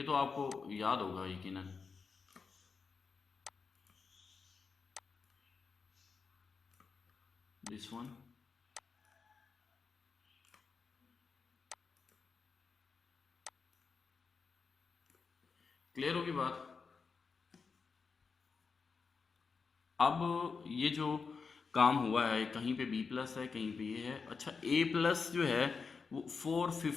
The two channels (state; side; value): quieter; right; 5.1 dB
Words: तो आपको याद होगा यकीनन। दिस वन, क्लियर होगी बात। अब ये जो काम हुआ है, कहीं पे बी प्लस है, कहीं पे ये है। अच्छा, ए प्लस जो है वो